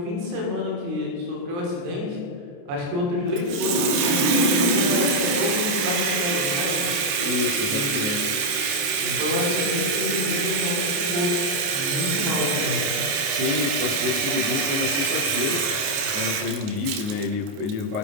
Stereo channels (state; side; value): late; left; 29 ms